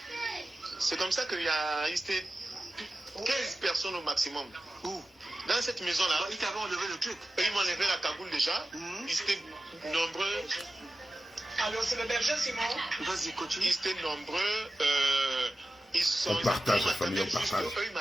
C'est comme ça qu'il y a 15 personnes au maximum. Où? Dans cette maison là. Ils t'avaient enlevé le truc. Ils m'ont enlevé la cagoule déjà. Ils étaient nombreux. Alors c'est le berger Simon. Vas-y, continue. Ils étaient nombreux. On partage la famille, on partage. Eux, ils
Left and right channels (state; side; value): normal; both; correlation 0.93